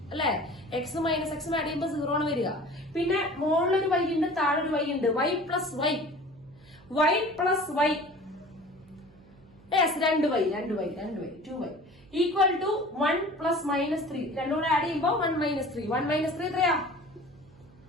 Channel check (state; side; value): noise; right; hum, 26 dB below the sound